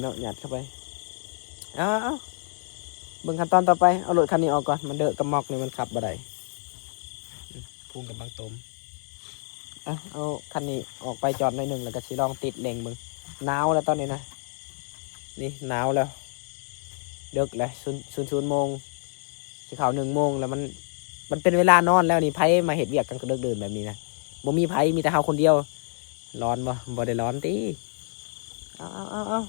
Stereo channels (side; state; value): right; silent; 60 dB below the other